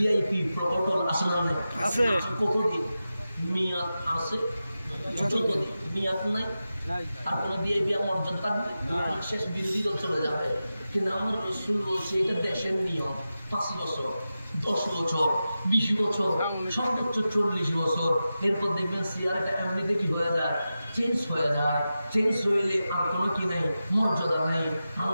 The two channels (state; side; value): inverted; both; correlation -0.92